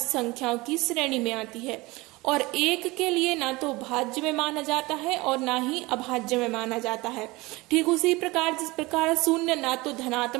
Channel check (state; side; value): quieter; left; 22.1 dB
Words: संख्याओं की श्रेणी में आती है। और 1 के लिए ना तो भाज्य में माना जाता है और ना ही अभाज्य में माना जाता है। ठीक उसी प्रकार जिस प्रकार 0 ना तो